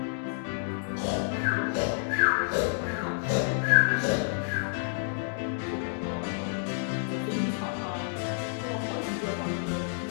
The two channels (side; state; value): right; silent; digital silence